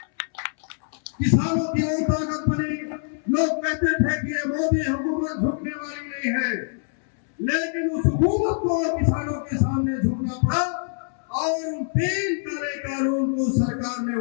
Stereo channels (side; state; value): right; silent; 62 dB below the other